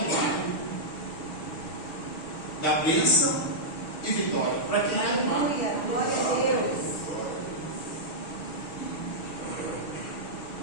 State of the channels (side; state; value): right; late; 6.2 ms